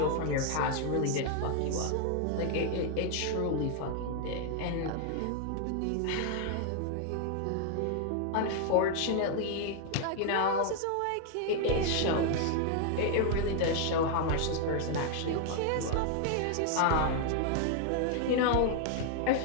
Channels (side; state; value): both; different; correlation 0.00